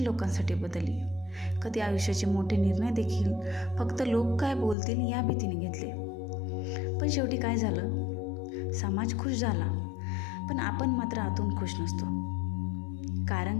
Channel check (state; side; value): drops out; right; at 4.8 s